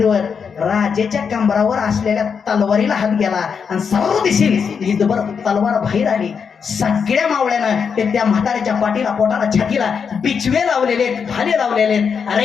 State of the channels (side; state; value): right; quieter; 6.4 dB